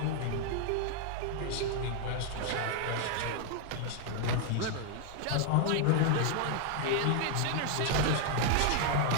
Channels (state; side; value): different; both; correlation 0.00